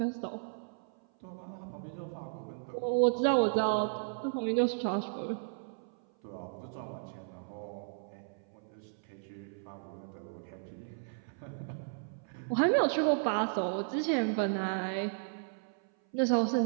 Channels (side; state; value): left; silent; 55 dB below the other